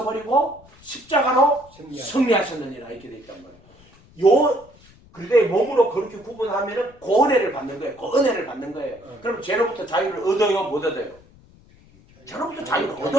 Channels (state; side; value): noise; left; rumble, 27 dB below the sound